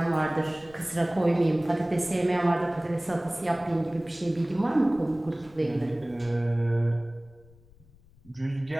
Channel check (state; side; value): noise; left; rumble, 26 dB below the sound